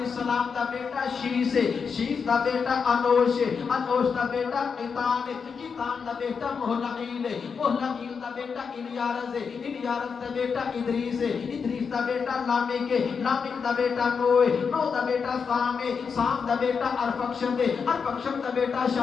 دا بیٹا شیس ہے، شیس دا بیٹا انوش ہے، انوش دا بیٹا قیطان ہے، قیطان دا بیٹا مہلعیل ہے، مہلعیل دا بیٹا الیارز ہے، الیارز دا بیٹا ادریس ہے، ادریس دا بیٹا لامک ہے، لامک دا بیٹا نوح ہے، نوح دا بیٹا سام ہے، سام دا بیٹا ارفکشد ہے، ارفکشد دا بیٹا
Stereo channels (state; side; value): quieter; right; 5.9 dB